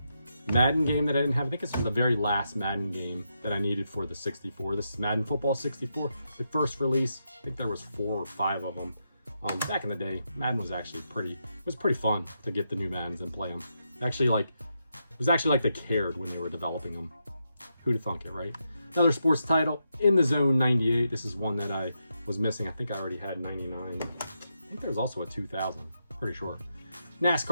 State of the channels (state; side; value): inverted; both; correlation -0.83